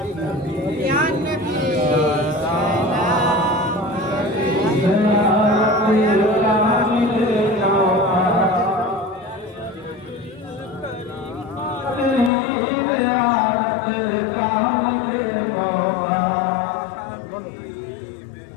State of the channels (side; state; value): right; drops out; at 12.3 s